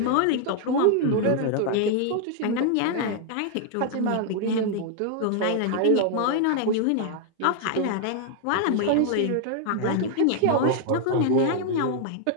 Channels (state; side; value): different; both; correlation 0.00